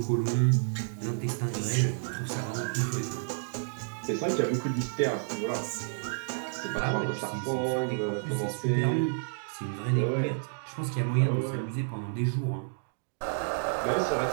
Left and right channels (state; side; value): silent; left; digital silence